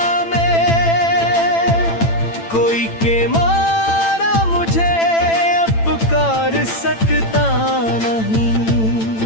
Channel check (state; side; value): late; right; 8.9 ms